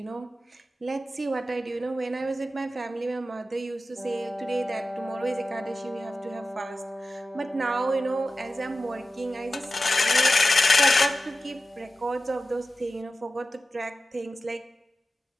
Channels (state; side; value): normal; both; correlation 0.94